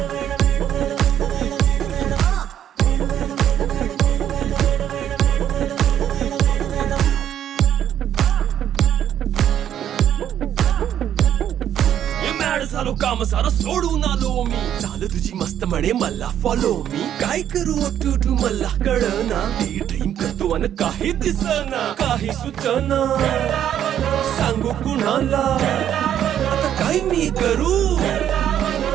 झालो काम सारा सोडून आलो मी झालं तुझी मस्त म्हणे मला फॉलो मी काय करू टू मला कळना ती ड्रीम करतो आणि काही दिसना काही सुचना सांगू कुणाला आता काय मी करू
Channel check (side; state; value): left; quieter; 10.3 dB